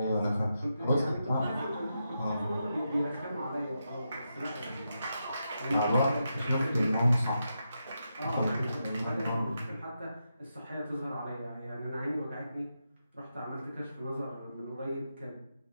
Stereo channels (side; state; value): both; inverted; correlation -0.86